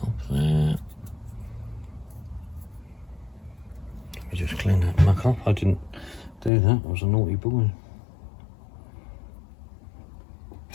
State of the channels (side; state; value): right; drops out; at 6.5 s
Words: off there. Let me just clean that muck off. I didn't do that. I was a naughty boy.